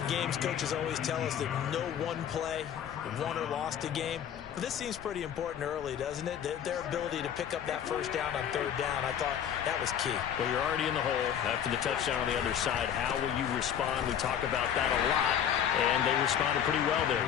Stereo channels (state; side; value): quieter; right; 9.2 dB